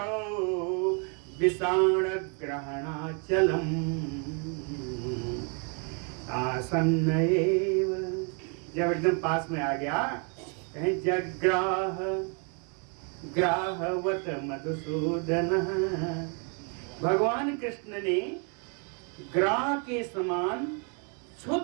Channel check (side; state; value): left; quieter; 37.9 dB